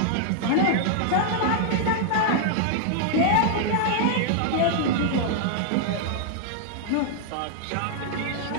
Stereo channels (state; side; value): different; both; correlation -0.01